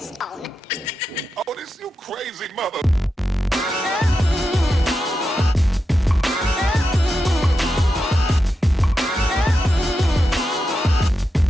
Oh, this you crazy mother.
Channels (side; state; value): both; normal; correlation 0.88